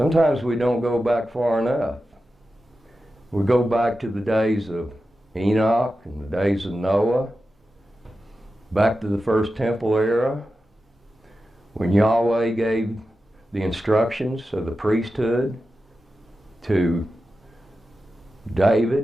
we don't go back far enough. We go back to the days of Enoch and the days of Noah, back to the first temple era, when Yahweh gave the instructions of the priesthood to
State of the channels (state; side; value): normal; both; correlation 0.92